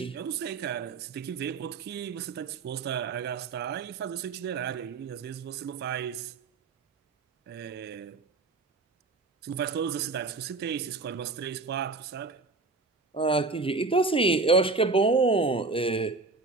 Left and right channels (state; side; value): quieter; left; 3.8 dB